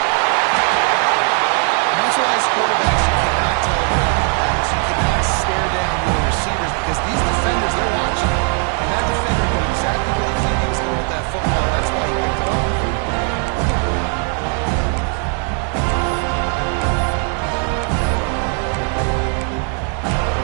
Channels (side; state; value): left; quieter; 39.3 dB